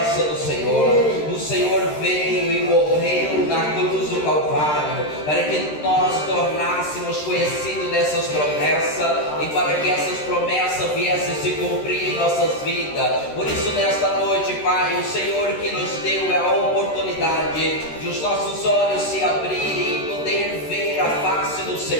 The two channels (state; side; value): late; right; 13 ms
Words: do Senhor, o Senhor veio e morreu na cruz do Calvário, para que nós tornássemos conhecidos dessas promessas, e para que essas promessas viessem se cumprir em nossas vidas. Por isso nesta noite, Pai, o Senhor que nos deu é a oportunidade de os nossos olhos se abrirem e poder ver a face do